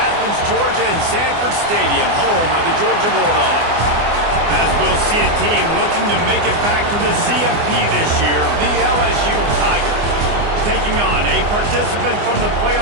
Georgia, and Sanford Stadium, home of the Georgia Bulldogs. As we'll see a team looking to make it back to the CFP this year, the LSU Tigers. Taking on a participant from the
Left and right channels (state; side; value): late; left; 24 ms